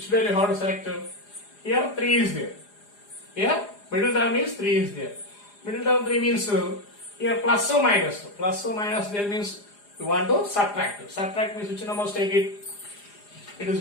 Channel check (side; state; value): right; late; 4.9 ms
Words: pair we have to select? Here 3 is there. Here middle term is 3 is there. Middle term 3 means here plus or minus. Plus or minus there means we want to subtract. Subtract means which numbers take it? It is